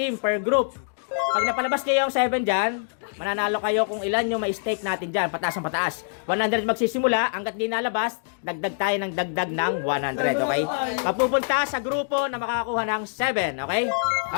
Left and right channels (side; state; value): right; silent; digital silence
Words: per group. Pag napalabas kayo yung 7 dyan, mananalo kayo kung ilan yung may stake natin dyan, pataas ang pataas. 100 magsisimula, hanggat di nalabas, dagdag tayo ng dagdag ng 100, okay? Mapupunta sa grupo na makakakuha ng 7, okay?